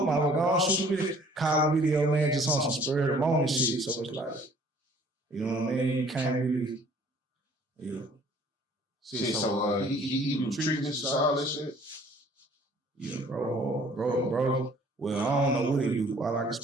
my go on shoot a video, call a video, man, just on some spur of the moment shit. So it's like, you know what I mean? You can't really, yeah. See, so he do treatments and all that shit? Yeah, bro. Well, I don't know what he do. All I can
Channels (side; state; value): both; normal; correlation 0.56